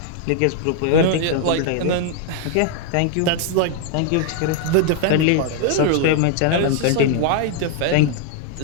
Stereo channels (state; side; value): different; both; correlation 0.00